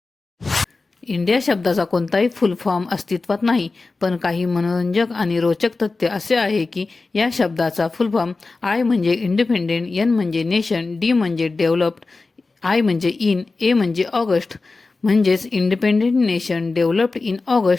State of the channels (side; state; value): right; quieter; 3.7 dB